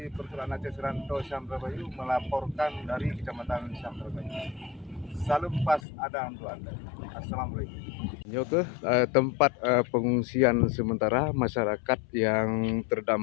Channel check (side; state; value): right; drops out; at 5.8 s